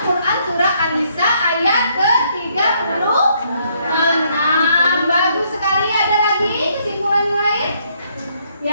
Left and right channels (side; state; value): both; inverted; correlation -0.70